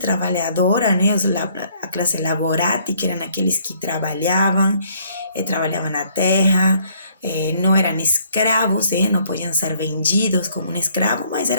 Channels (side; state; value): both; inverted; correlation -0.64